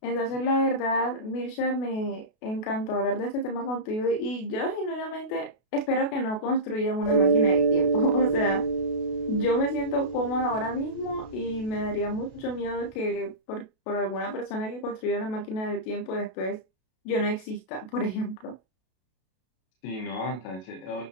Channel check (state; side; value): late; right; 32 ms